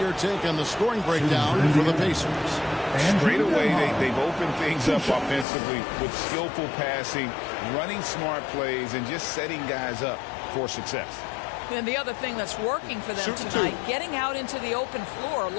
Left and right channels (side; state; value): right; drops out; at 5.5 s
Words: take on the scoring breakdown for the Pacers. Straight away, they've opened things up offensively with skillful passing, running smart plays, and just setting guys up for success. And the other thing that's working for them tonight, getting out into the open floor. A